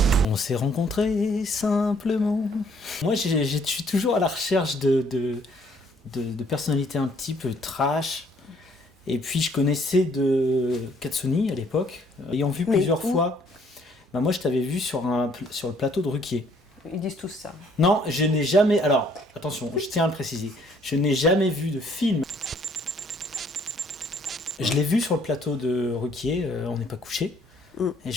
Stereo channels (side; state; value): both; normal; correlation 0.63